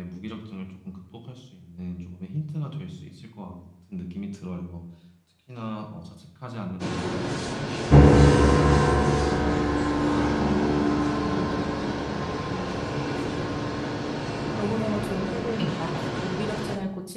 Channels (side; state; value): both; identical; correlation 1.00